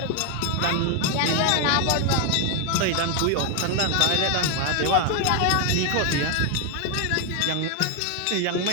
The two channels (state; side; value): different; both; correlation 0.01